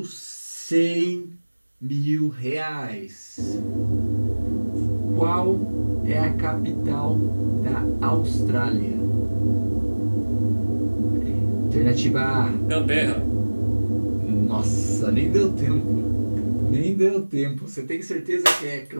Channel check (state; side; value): inverted; both; correlation -1.00